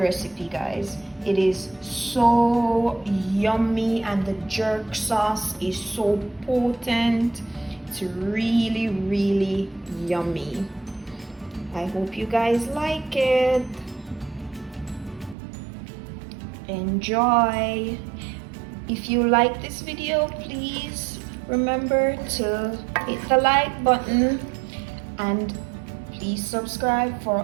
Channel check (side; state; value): left; drops out; at 15.4 s